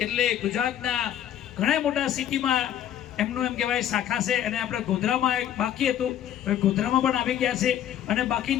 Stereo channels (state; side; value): quieter; right; 10.9 dB